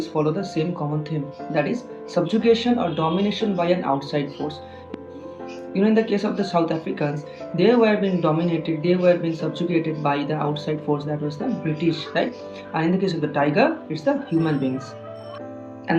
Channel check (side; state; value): both; identical; correlation 1.00